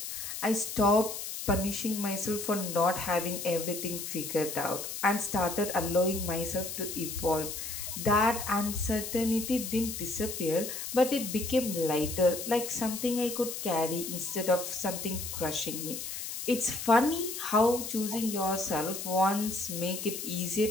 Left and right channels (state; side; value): noise; left; hiss, 6 dB below the sound